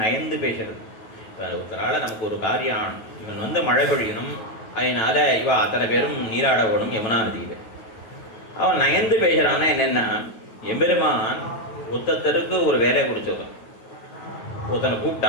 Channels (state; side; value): late; right; 9.4 ms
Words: நயந்து பேசுறது. இப்போ ஒருத்தரால் நமக்கு ஒரு காரியம், இவன் மழை பொழியணும், அதனால இவ அத்தனை பேரும் நீராட ஓடும் யமுனா நதியில். அவன் நயந்து பேசுகிறான்னா என்னென்னா, எம்பெருமான் ஒருத்தருக்கு ஒரு வேலையை கொடுத்துருக்கான். ஒருத்தனை